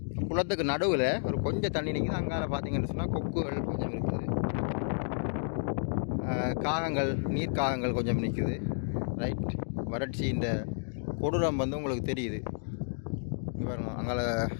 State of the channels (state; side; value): silent; right; digital silence